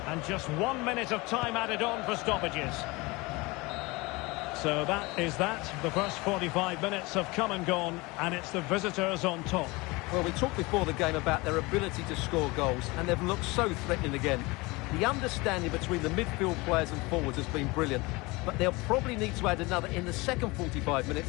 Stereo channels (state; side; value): quieter; right; 23.8 dB